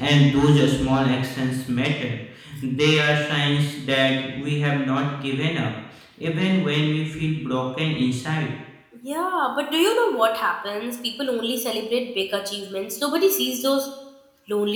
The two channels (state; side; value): identical; both; correlation 1.00